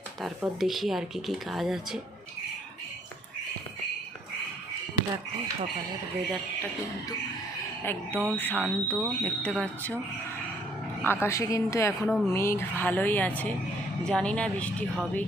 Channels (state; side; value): normal; both; correlation 0.65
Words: তারপর দেখি আর কি কাজ আছে। দেখো সকালের ওয়েদারটা কিন্তু একদম শান্ত, দেখতে পাচ্ছ। আকাশে কিন্তু এখনও মেঘ ভালোই আছে, জানি না বৃষ্টি হবে